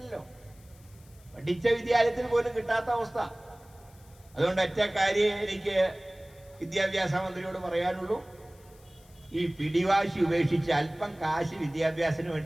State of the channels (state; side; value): noise; left; hiss, 28 dB below the sound